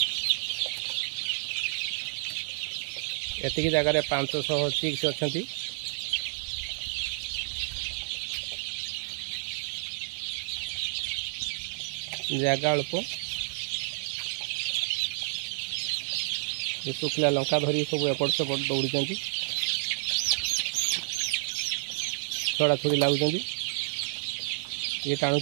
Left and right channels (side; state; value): left; silent; digital silence